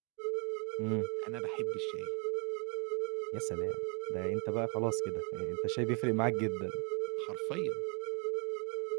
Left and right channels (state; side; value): quieter; left; 35.7 dB